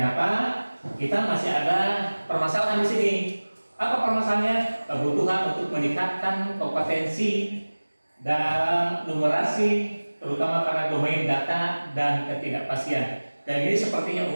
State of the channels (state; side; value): inverted; both; correlation -1.00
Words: apa? Kita masih ada permasalahan di sini. Apa permasalahannya? Kebutuhan untuk meningkatkan kompetensi dalam numerasi, terutama pada domain data dan ketidakpastian. Dan ini sepertinya